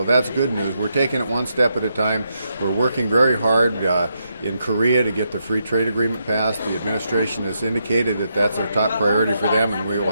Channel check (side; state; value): both; inverted; correlation -0.81